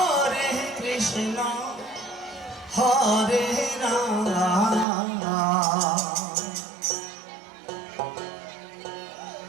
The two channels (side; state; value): left; drops out; at 4.9 s